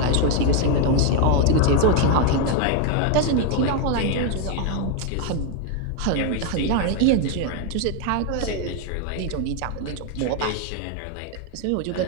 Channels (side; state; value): both; different; correlation 0.01